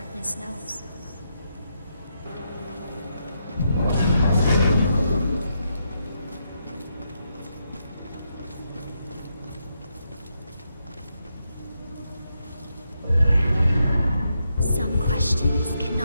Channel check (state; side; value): inverted; both; correlation -0.82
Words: darkness knows. Some questions